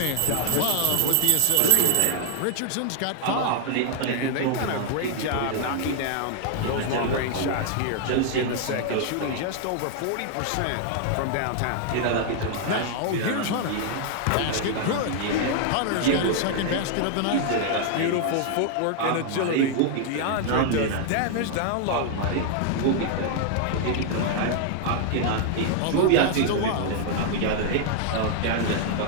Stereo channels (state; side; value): different; both; correlation 0.00